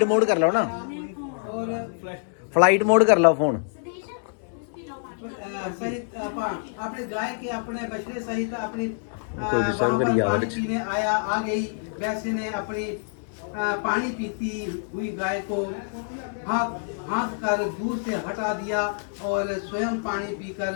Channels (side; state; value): right; silent; 61 dB below the other